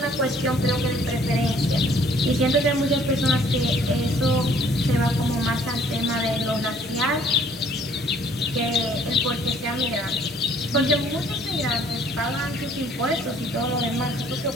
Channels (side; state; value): both; normal; correlation 0.59